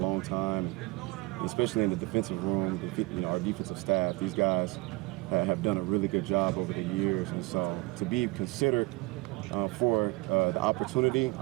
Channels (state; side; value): quieter; left; 23.6 dB